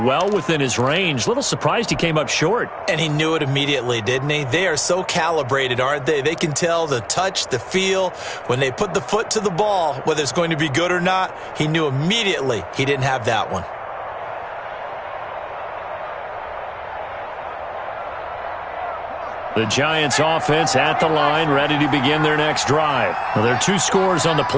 within his range. Little surprised he came up short. And he knew it immediately, didn't he? They are so calibrated, aren't they? They can tell the touch, the feel. When they put the foot to the ball, whether it's going to be good or not, he knew immediately he didn't have that one. The Giants offense at the line, ready to begin their next drive. Well, there are 2 scores on the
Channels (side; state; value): both; identical; correlation 1.00